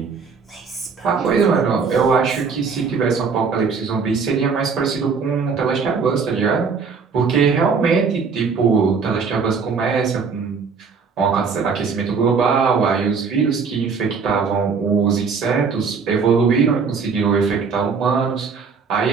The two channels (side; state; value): left; quieter; 5.4 dB